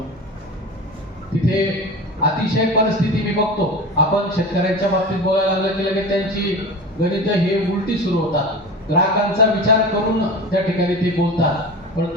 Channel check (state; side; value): normal; both; correlation 0.31